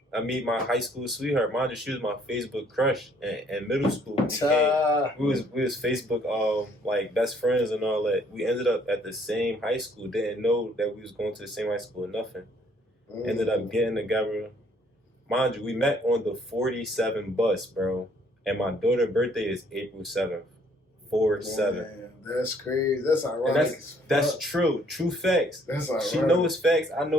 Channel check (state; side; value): normal; both; correlation 0.63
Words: I meet my high school sweetheart. Mind you, she was my Facebook crush in middle school. We was Facebook like best friends and all that. We ended up at the same high school. Didn't know that we was going to the same high school or nothing. Ended up getting together. Mind you, we met on the 47 bus, bro. And my daughter's birthday is April 7th. 4/7. That's crazy. That's ironic. That's true. True facts. That's ironic. She knows facts. I